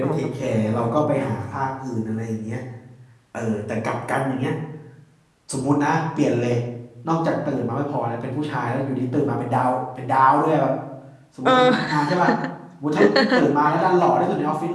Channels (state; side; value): identical; both; correlation 1.00